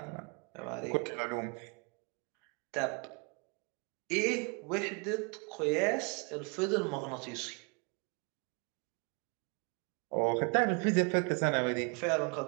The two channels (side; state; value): left; quieter; 33.6 dB